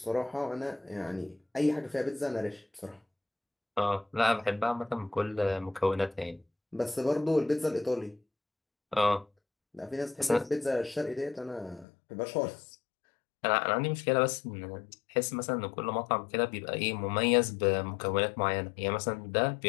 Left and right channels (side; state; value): right; drops out; at 11.9 s